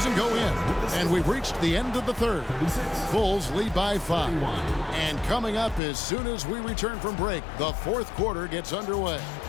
go in. And we've reached the end of the third. Bulls lead by 5. And coming up as soon as we return from break, the fourth quarter gets underway.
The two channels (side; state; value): right; drops out; at 5.8 s